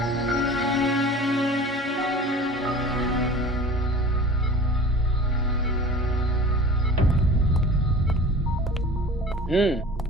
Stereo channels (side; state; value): both; normal; correlation 0.40